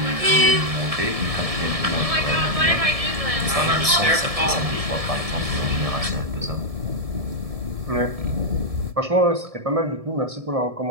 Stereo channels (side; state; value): left; late; 1.7 ms